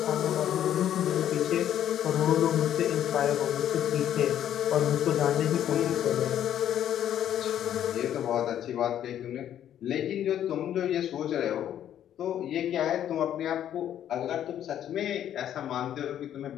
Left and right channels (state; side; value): quieter; right; 10.6 dB